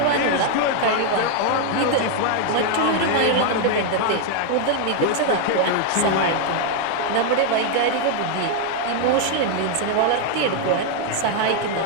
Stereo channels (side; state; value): both; different; correlation 0.00